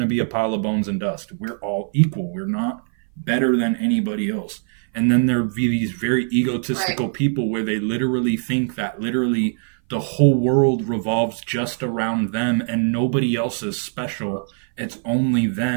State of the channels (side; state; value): left; silent; 58 dB below the other